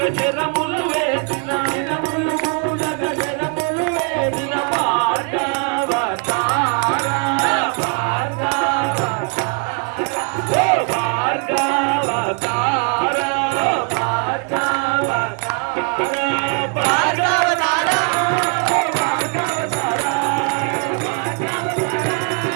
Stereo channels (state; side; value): quieter; left; 35.2 dB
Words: శరముల వేసిన శిరములు పూలగ శరములు వేసిన భార్గవత